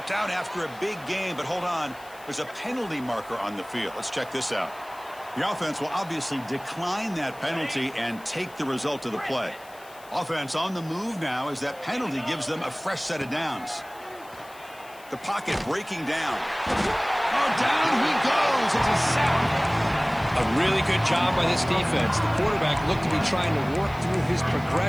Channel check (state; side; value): noise; left; hiss, 23 dB below the sound